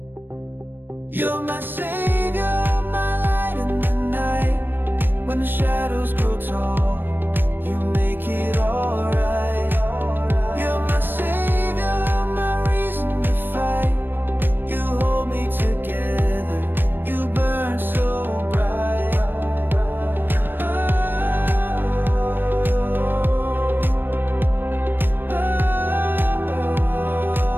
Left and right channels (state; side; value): late; left; 0.095 ms